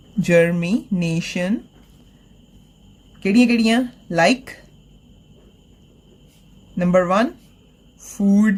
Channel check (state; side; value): identical; both; correlation 1.00